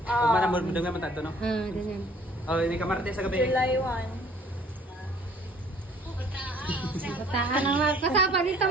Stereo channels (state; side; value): normal; both; correlation 0.56